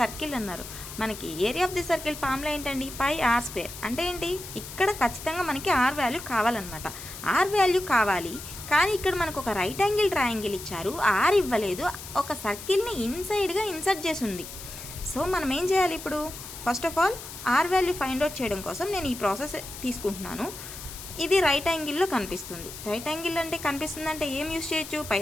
అన్నారు. మనకి area of the circle formula ఏంటండి? పై ఆర్ స్క్వేర్. అంటే ఏంటి? ఇక్కడ ఖచ్చితంగా మనకి ఆర్ వాల్యూ కావాలన్నమాట. ఆర్ వాల్యూ కావాలి, కానీ ఇక్కడ మనకు ఒక రైట్ యాంగిల్ ట్రయాంగిల్ ఇచ్చారు, ఆర్ ఇవ్వలేదు, ఒక సర్కిల్ని ఇన్సైడ్గా ఇన్సర్ట్ చేసి ఉంది. సో మనం ఏం చేయాలి ఇప్పుడు? First of all, R value find out చేయడం కోసం నేను ఈ ప్రాసెస్ తీసుకుంటున్నాను. ఇది రైట్ యాంగిల్లో కనిపిస్తుంది. రైట్ యాంగిల్ అంటే కనిపిస్తుంది అంటే ఏం యూస్ చేయొచ్చు?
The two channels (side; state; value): left; noise; hiss, 12 dB below the sound